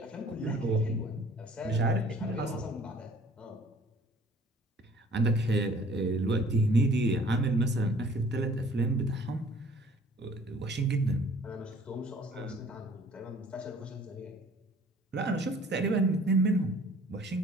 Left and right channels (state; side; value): normal; both; correlation 0.53